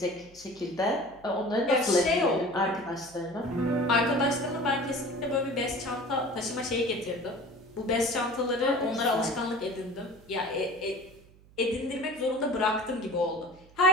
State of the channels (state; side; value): noise; right; hum, 25 dB below the sound